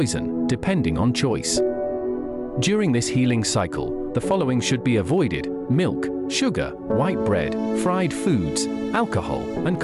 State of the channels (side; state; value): both; identical; correlation 1.00